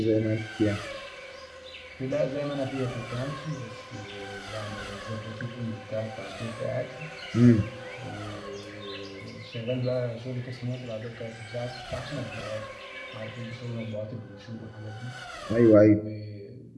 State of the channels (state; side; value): identical; both; correlation 1.00